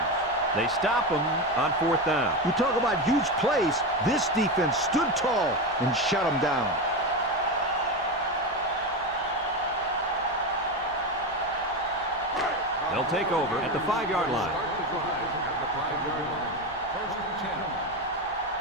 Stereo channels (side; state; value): left; noise; hum, 24 dB below the sound